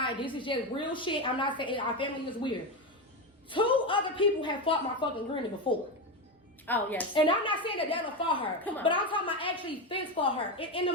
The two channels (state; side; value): normal; both; correlation 0.15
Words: This is just real shit. I'm not saying our family is weird. 2 other people have fought my fucking granny before. Oh, yes. And I'm not saying that that'll for her, Come on. but I'm talking about actually fence for her in the